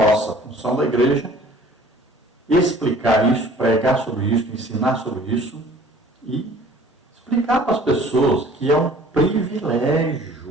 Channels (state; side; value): normal; both; correlation 0.51